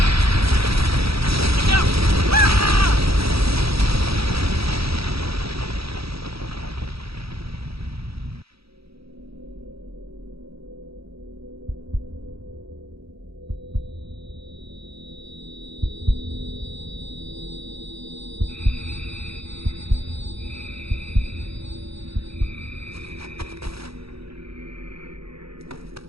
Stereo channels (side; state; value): left; late; 0.77 ms